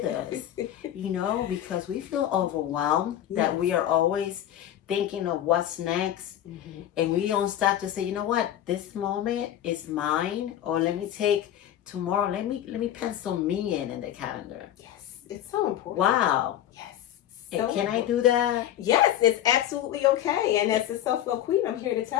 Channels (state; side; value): quieter; right; 11.6 dB